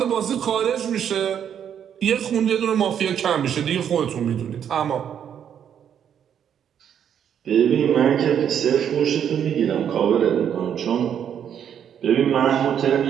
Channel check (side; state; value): left; quieter; 8.8 dB